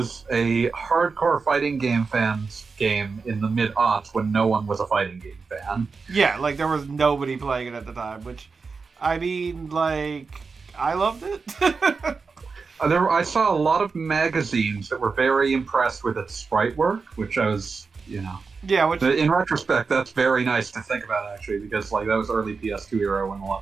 a hardcore fighting game fans game in the mid-aughts when no one was a fighting game fan. Yeah, like, there was nobody playing it at the time, which, I mean, like, I loved it. I saw a lot of magazines that were very impressed with its sprite work, which I was, you know... Yeah, which... In retrospect, that's very nice to think about, actually, because, like, that was early PS2 era when a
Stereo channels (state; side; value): quieter; left; 4.7 dB